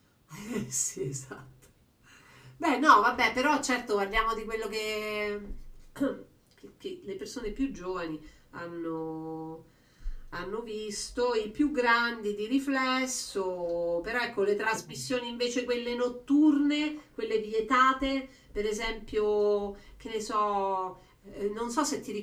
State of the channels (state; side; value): identical; both; correlation 1.00